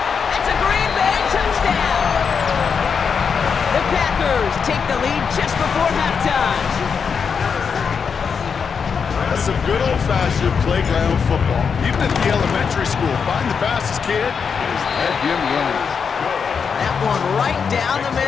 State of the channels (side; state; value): right; quieter; 6.2 dB